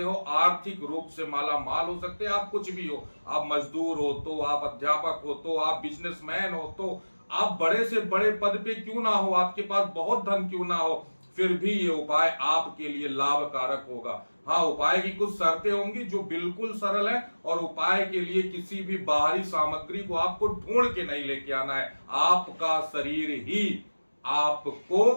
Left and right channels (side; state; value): both; inverted; correlation -1.00